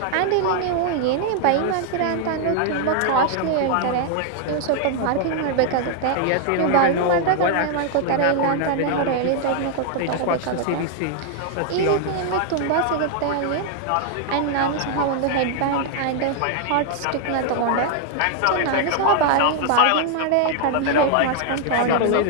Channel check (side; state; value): both; different; correlation 0.00